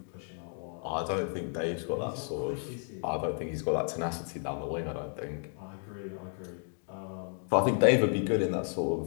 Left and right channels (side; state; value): right; silent; 56 dB below the other